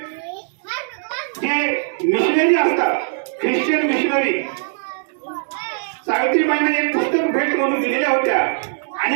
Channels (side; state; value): left; silent; digital silence